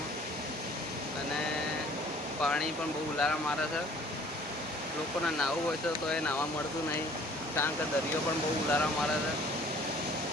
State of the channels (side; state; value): both; normal; correlation 0.54